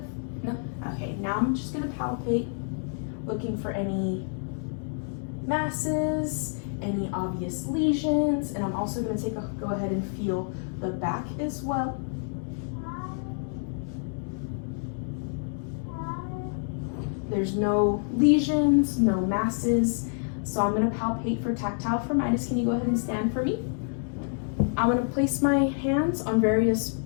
No. Okay, now I'm just gonna palpate, looking for any masses, any obvious lesions, and I'm also gonna go ahead and feel the back as well. There's no lesions, no masses. So I'm going to palpate for tactile firmitis. Can you go ahead and stand for me? I'm going to place my hands on various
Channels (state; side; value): silent; right; 59 dB below the other